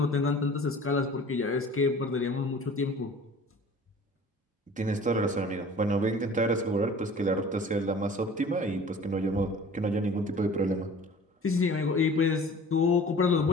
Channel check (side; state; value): both; normal; correlation 0.45